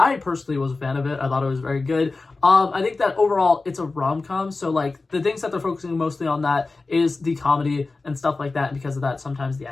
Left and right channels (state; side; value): quieter; right; 3.6 dB